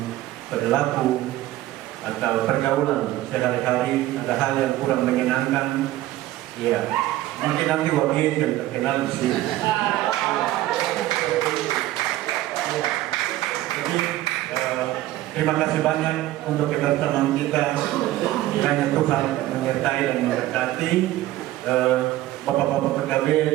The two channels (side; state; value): left; quieter; 15.5 dB